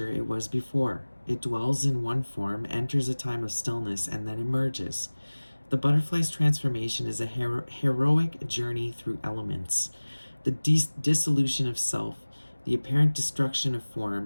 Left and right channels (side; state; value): both; inverted; correlation -1.00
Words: it was before. It dwells in one form, enters a time of stillness, and then emerges. The butterfly's transformation is a heroic journey through elements, the dissolution of self, the apparent destruction of